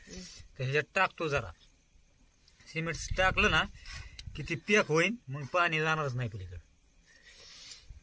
त्याच्यात टाकतो. जरा सिमेंट टाकलं ना की ती पॅक होईल, मग पाणी जाणारच नाही पलीकडे.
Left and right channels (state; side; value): identical; both; correlation 1.00